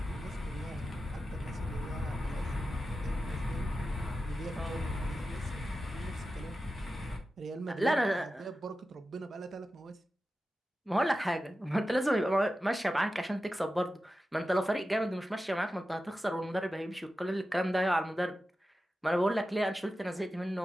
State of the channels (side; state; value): both; normal; correlation 0.93